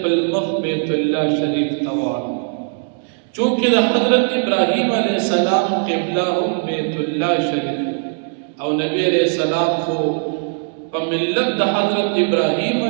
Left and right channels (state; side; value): silent; left; 60 dB below the other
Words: مخ بیت الله شریف ته واړوه. چونکه د حضرت ابراهیم علیہ السلام قبله هم بیت الله شریف او نبی علیہ السلام خو په ملت د حضرت ابراهیم